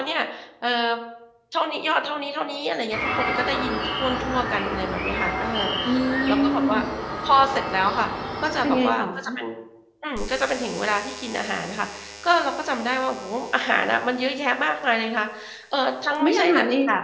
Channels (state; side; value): identical; both; correlation 1.00